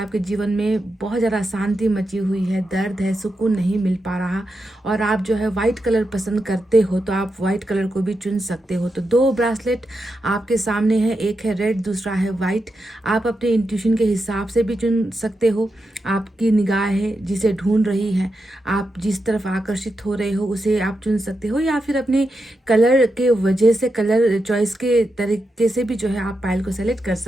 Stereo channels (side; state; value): both; normal; correlation 0.87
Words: जीवन में बहुत ज़्यादा शांति मची हुई है, दर्द है, सुकून नहीं मिल पा रहा और आप जो है वाइट कलर पसंद करते हो, तो आप वाइट कलर को भी चुन सकते हो। तो 2 ब्रासलेट आपके सामने है, एक है रेड, दूसरा है वाइट। आप अपने इंट्यूशन के हिसाब से भी चुन सकते हो। आपकी निगाह है जिसे ढूंढ रही है, आप जिस तरफ आकर्षित हो रहे हो उसे आप चुन सकते हो, या फिर अपने कलर के वजह से, कलर चॉइस के तरीके से भी जो है आप पायल को सेलेक्ट कर